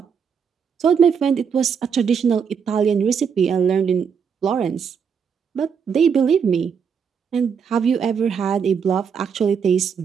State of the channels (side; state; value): left; quieter; 6.7 dB